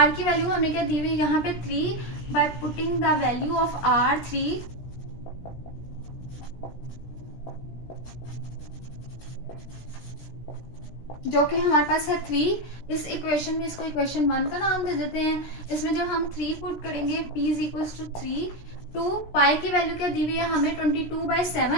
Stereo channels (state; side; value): late; right; 17 ms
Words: की वैल्यू हमें क्या दी हुई है यहाँ पे 3, but putting the value of R 3 जो कि हमारे पास है 3। इस इक्वेशन में इसको इक्वेशन 1 का नाम दे देते हैं। इसमें जब हम 3 पुट करेंगे p is equal to 3 two pi की वैल्यू क्या दी हुई है हमें